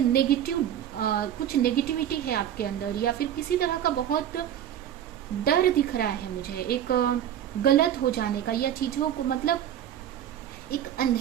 कुछ नेगेटिविटी है आपके अंदर, या फिर किसी तरह का बहुत डर दिख रहा है मुझे, एक गलत हो जाने का, या चीजों को मतलब एक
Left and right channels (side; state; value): left; quieter; 10.5 dB